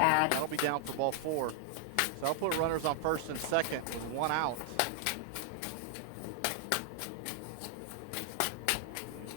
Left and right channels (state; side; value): different; both; correlation 0.00